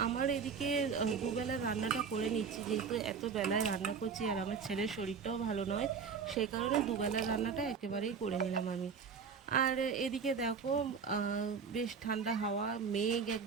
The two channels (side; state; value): left; quieter; 5.9 dB